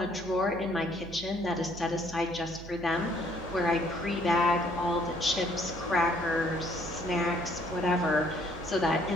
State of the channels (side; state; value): right; noise; hum, 14 dB below the sound